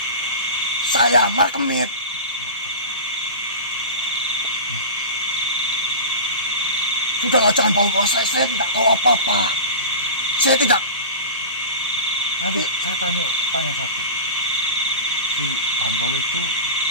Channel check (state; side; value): inverted; both; correlation -0.30